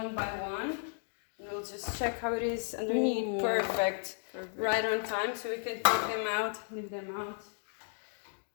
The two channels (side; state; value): right; silent; digital silence